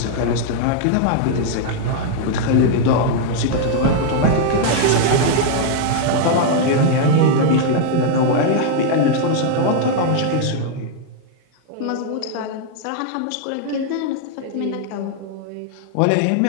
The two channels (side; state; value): both; different; correlation -0.01